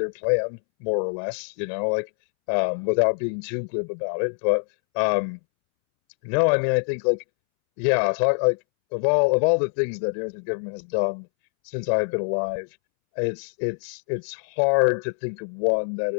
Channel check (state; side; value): silent; right; 62 dB below the other